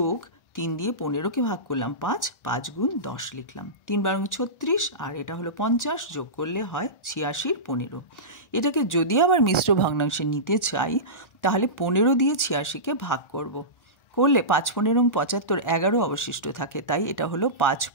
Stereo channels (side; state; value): right; late; 1.4 ms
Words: 3 দিয়ে 15কে ভাগ করলাম 5, 5 গুণ 10 লিখলাম, 3 12 36, আর এটা হলো 50, যোগ করলে হয় 86-র 15। এটাকে যদি আবার মিশ্র ভগ্নাংশে নিতে চাই তাহলে 15 দিয়ে 86কে ভাগ করলে 5 15 75, 11 অবশিষ্ট থাকে, তাই এটা হলো 5